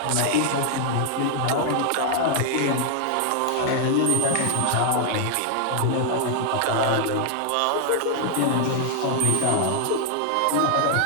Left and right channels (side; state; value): both; different; correlation 0.00